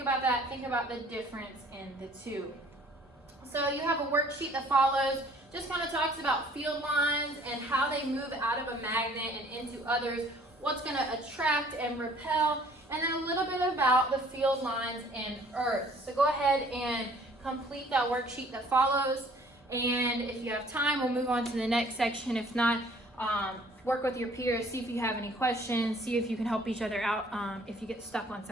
about that, think about the difference in the two. So you have a worksheet that follows, just kind of talks about field lines and how they move out of a magnet and into others, what's going to attract and repel, and then a little bit about the field lines in Earth. So go ahead and complete that worksheet that follows. And if you have time, we'll move on to the next section. If not, work with your peers, see if you have any questions, see if you can help each other out if you get stuck on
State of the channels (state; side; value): normal; both; correlation 0.56